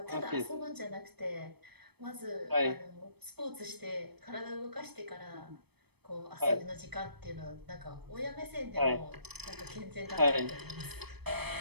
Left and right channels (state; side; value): late; left; 0.98 ms